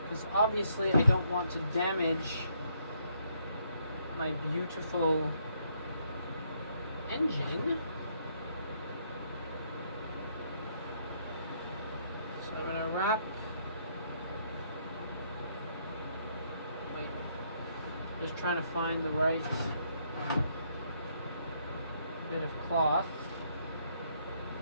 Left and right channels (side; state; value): both; inverted; correlation -0.71